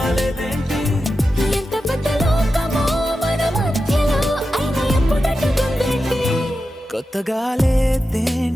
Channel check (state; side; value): normal; both; correlation 0.91